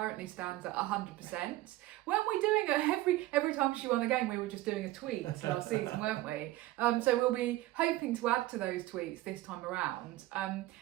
stands at 100%. Weren't we doing it every time she won a game? We were just doing a tweet last season, weren't we? So we'll be hoping to add to those tweets this time around.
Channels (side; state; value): left; quieter; 17.1 dB